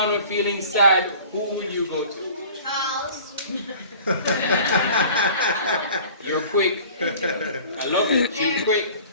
or feeling sad, who would you go to? House. You're quick. I love it. You're quick.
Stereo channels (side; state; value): both; inverted; correlation -0.46